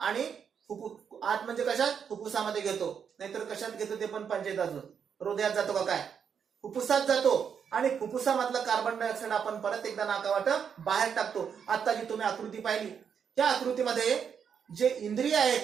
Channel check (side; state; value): left; quieter; 7.3 dB